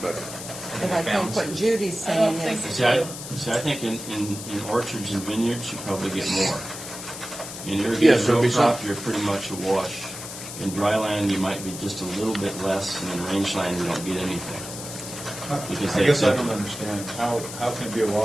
But But I think what Judy's saying is, See, I think in orchards and vineyards, you probably get more. In irrigated Yes, row there'll be crop, you're pretty much a wash. In dry land, you might be just a little bit less, and in rangeland, you don't get anything. Because I they guess I accept don't it. understand, how can it be a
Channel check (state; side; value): noise; left; hiss, 10 dB below the sound